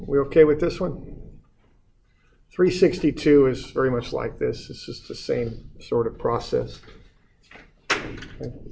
we okay with this one? 362 is very much like this. It's just the same sort of process. Okay.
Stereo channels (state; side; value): identical; both; correlation 1.00